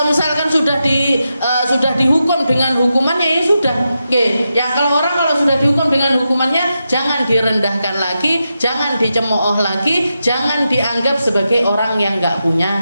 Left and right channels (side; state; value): both; inverted; correlation -0.88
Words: misalkan sudah dihukum dengan hukumannya, ya sudah. Ya kalau sudah dihukum dengan hukumannya, jangan direndahkan lagi, jangan dicemooh lagi, jangan dianggap sebagai orang yang nggak